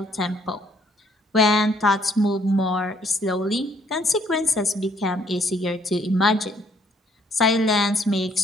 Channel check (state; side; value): normal; both; correlation 0.66